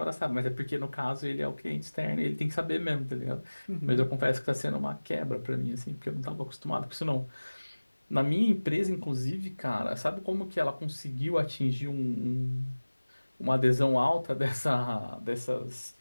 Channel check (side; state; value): both; inverted; correlation -1.00